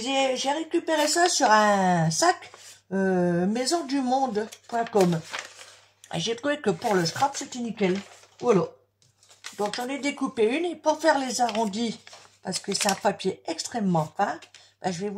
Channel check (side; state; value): both; identical; correlation 1.00